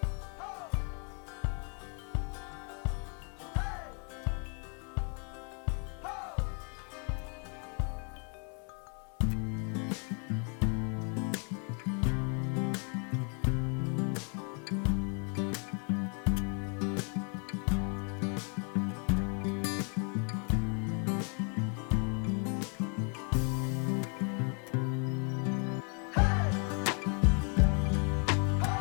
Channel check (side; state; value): right; quieter; 38.9 dB